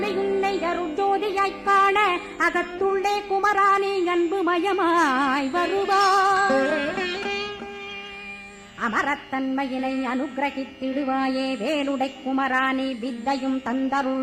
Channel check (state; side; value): identical; both; correlation 1.00